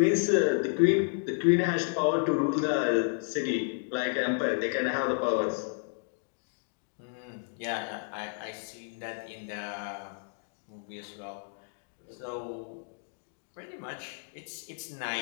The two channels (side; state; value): right; silent; 57 dB below the other